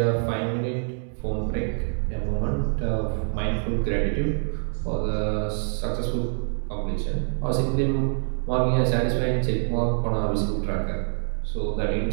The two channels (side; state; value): left; silent; digital silence